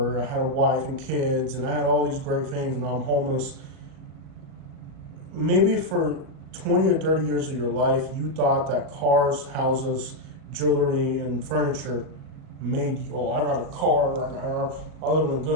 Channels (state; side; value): late; left; 38 ms